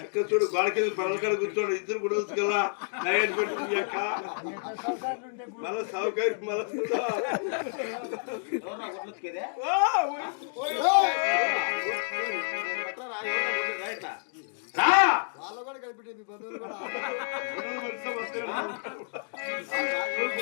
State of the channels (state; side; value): silent; right; digital silence